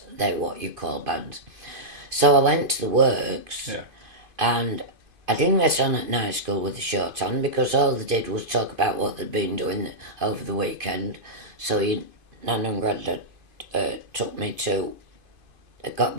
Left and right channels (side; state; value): left; late; 2.5 ms